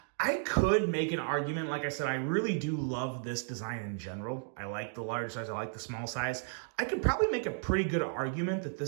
I could make an argument, like I said, I really do love this design in general. I like the large size, I like the small size. I could probably make a pretty good argument that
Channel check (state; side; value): silent; left; digital silence